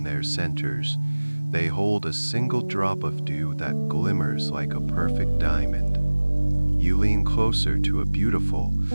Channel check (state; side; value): inverted; both; correlation -1.00